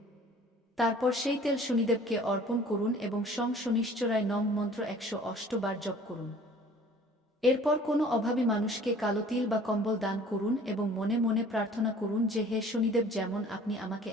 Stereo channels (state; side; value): normal; both; correlation 0.50